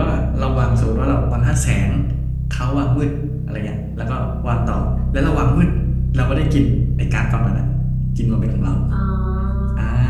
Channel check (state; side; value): identical; both; correlation 1.00